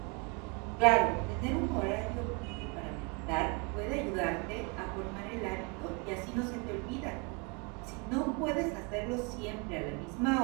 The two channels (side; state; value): left; quieter; 30.8 dB